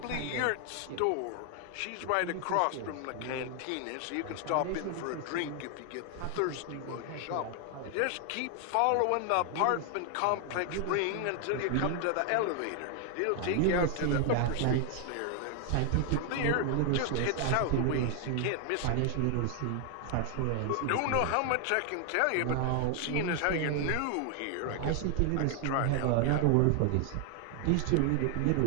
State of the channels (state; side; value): different; both; correlation 0.00